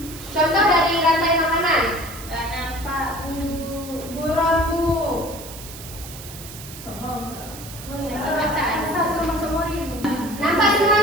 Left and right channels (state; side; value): noise; right; hiss, 14 dB below the sound